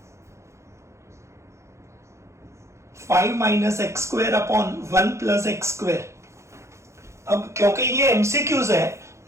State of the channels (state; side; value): late; left; 0.14 ms